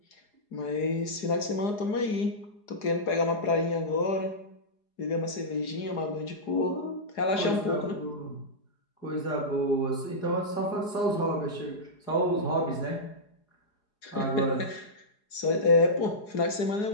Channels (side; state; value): right; late; 4.8 ms